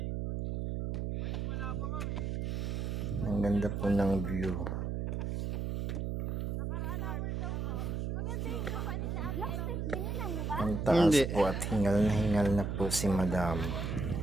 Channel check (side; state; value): right; noise; hum, 1 dB below the sound